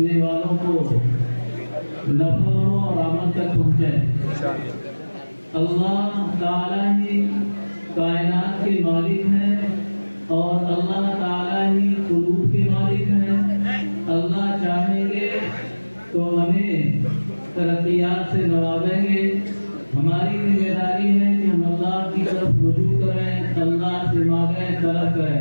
والوں کو نفع اور آمد تک پہنچے اللہ تعالیٰ ہی کائنات کے مالک ہیں اور اللہ تعالیٰ ہی قلوب کے مالک ہیں اللہ چاہیں گے تو ہمیں ترقیات سے نوازیں گے ہماری ذمہ داری ہے کہ ہم اللہ کی طرف رجوع کریں اللہ سے مانگیں طلب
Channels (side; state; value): both; inverted; correlation -1.00